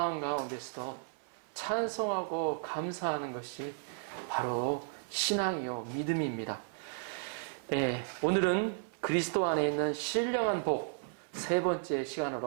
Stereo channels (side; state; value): left; silent; 55 dB below the other